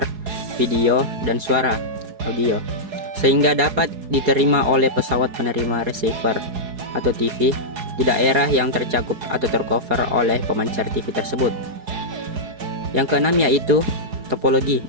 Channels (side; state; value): left; late; 4.7 ms